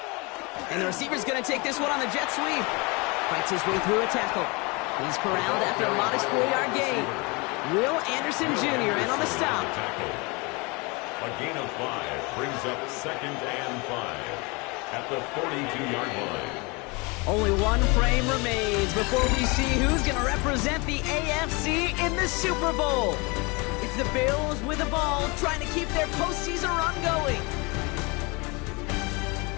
And the receiver's going to take this one on the jet sweep. Fights his way through a tackle. He's corralled after a modest 4-yard gain. Will Anderson Jr. in on the stop. A gain of 5 brings up 2nd and 5 at the 42-yard line. Only one frame remains before we see who's going to represent the AFC in the Super Bowl. It's the Bills with the ball trying to keep their postseason run going.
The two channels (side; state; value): right; quieter; 27.8 dB